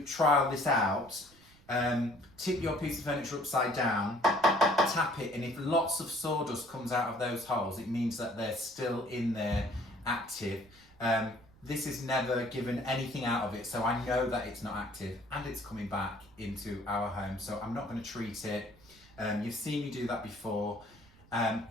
trial this out, tip your piece of furniture upside down, tap it, and if lots of sawdust comes out of those holes, it means that they're still in there active. This is never given anything out of it, so I know that it's not active, and it's coming back into our home, so I'm not going to treat it. You've seen me do that before.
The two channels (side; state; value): right; noise; rumble, 26 dB below the sound